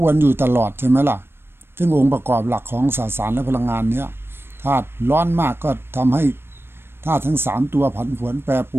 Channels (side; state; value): left; late; 0.11 ms